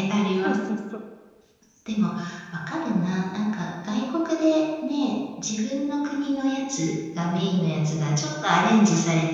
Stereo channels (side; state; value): both; identical; correlation 1.00